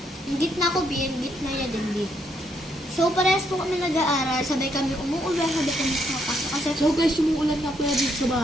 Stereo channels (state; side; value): normal; both; correlation 0.74